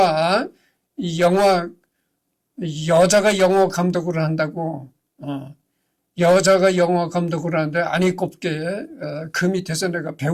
여자가 영화 감독을 한다고, 여자가 영화 감독을 하는데 아니 곱게 그 밑에서 내가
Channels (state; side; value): identical; both; correlation 1.00